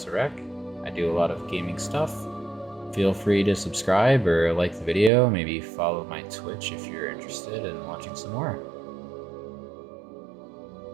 I do a lot of gaming stuff. Feel free to subscribe or like the video, maybe follow my Twitch if you're interested in watching some more.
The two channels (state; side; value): drops out; left; at 5.1 s